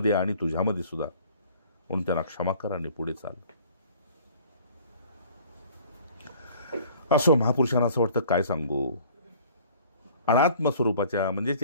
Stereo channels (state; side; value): inverted; both; correlation -0.52